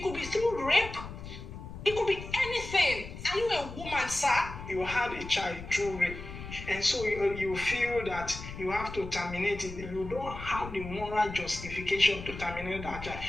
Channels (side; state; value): left; noise; rumble, 11 dB below the sound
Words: could be through rape. It could be anything. Are you a woman, sir? You had a child through rape, and so you feel that you have to terminate it. You don't have the moral justification to terminate that child.